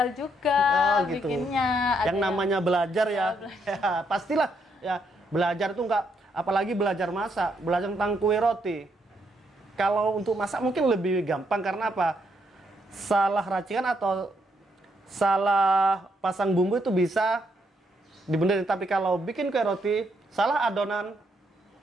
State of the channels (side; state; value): both; normal; correlation 0.75